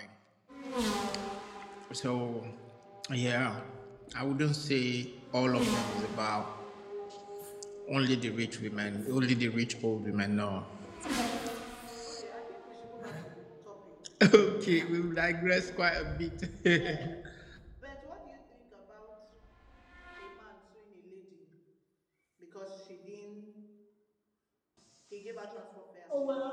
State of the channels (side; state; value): both; identical; correlation 1.00